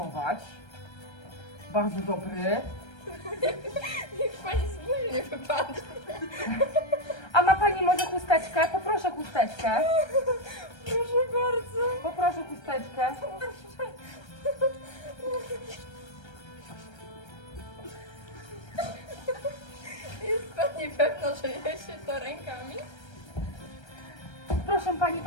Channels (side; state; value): right; late; 1.3 ms